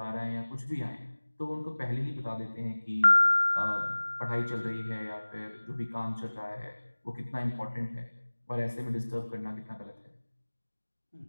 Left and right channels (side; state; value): both; inverted; correlation -1.00